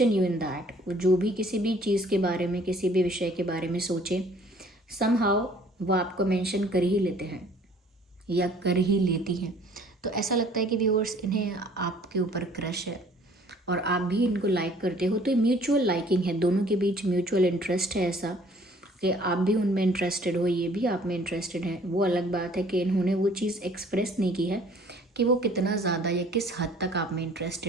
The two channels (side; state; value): both; normal; correlation 0.55